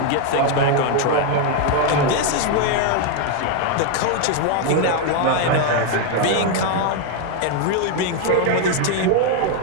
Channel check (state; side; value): different; both; correlation 0.01